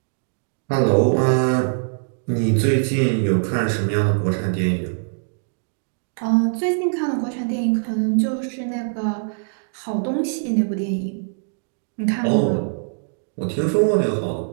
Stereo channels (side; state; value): left; silent; digital silence